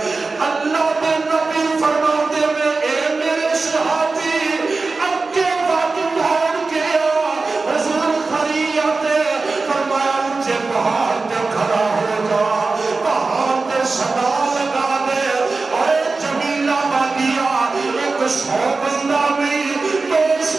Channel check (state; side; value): quieter; left; 3.9 dB